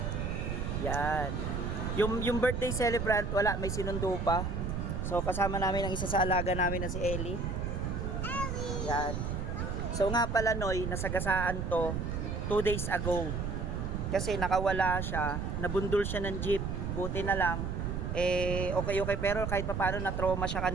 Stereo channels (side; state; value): right; noise; rumble, 2 dB below the sound